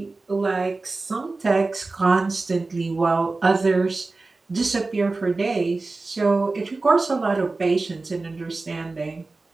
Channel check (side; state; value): left; quieter; 3.5 dB